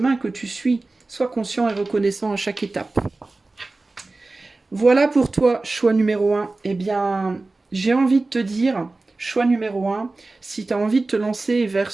que tu suis. Sois conscient et reconnaissant à chaque étape. Voilà pour toi, choix numéro 1. Eh bien, j'ai envie de te dire, choix numéro 1, si tu as envie de te lancer vers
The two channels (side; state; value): left; quieter; 3.3 dB